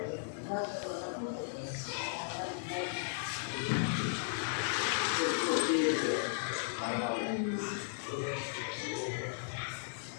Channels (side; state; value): right; silent; digital silence